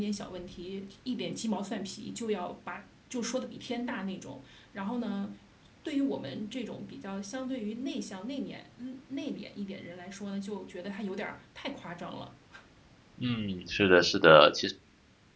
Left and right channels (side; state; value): both; identical; correlation 1.00